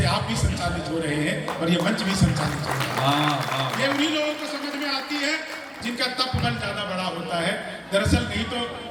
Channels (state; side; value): identical; both; correlation 1.00